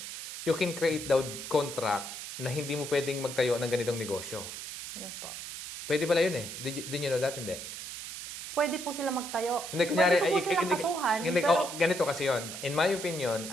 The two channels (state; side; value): noise; right; hiss, 9 dB below the sound